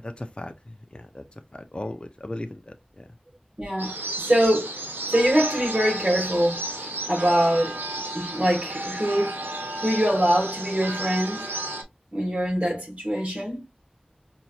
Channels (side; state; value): both; normal; correlation 0.86